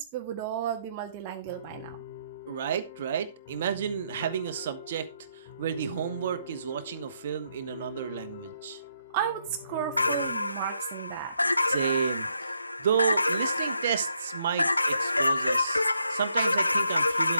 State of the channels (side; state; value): both; inverted; correlation -0.76